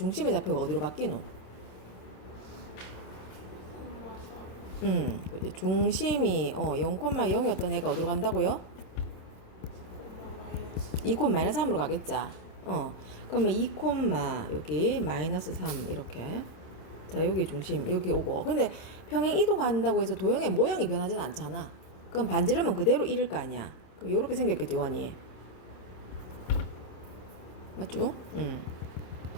좌표가 어디로 바뀌노? 중심이 0,0였던 애가 어디로 간다고요? 2, 마이너스 3으로 가겠자. 그러면 2, 여기 마이너스 3 이렇게. 자 여기 중심 여기 오고. 근데 평행 이동한다고 해서 도형의 모양이 변하진 않잖아. 그럼 반지름은 그대로 1일 거 아니야. 그럼 요렇게 생겼겠지 원이. 맞죠?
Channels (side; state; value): right; late; 27 ms